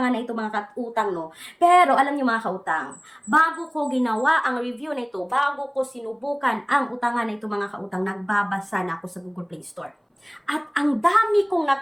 na ito, mga kautang, no? Pero alam niyo, mga kautang, bago ko ginawa ang review na ito, bago ko sinubukan ang utangan na ito, mga kautang, nagbabasa na ako sa Google Play Store. At ang dami kong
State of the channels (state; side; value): identical; both; correlation 1.00